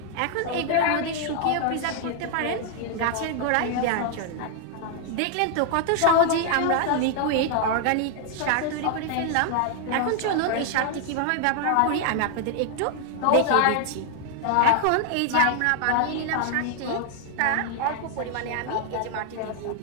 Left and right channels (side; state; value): both; different; correlation 0.00